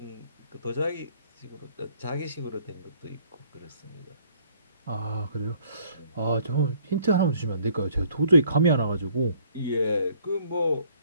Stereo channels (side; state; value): both; inverted; correlation -0.61